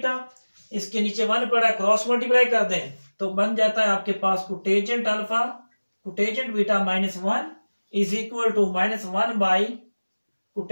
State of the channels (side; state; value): both; inverted; correlation -1.00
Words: इसके नीचे 1 पड़ा है, क्रॉस मल्टीप्लाई कर दें तो बन जाता है आपके पास cotangent alpha cotangent beta -1 is equal to -1 by